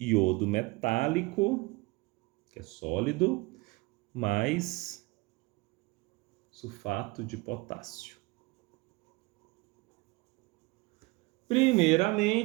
metálico, que é sólido, mais sulfato de potássio.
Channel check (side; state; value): left; quieter; 24.1 dB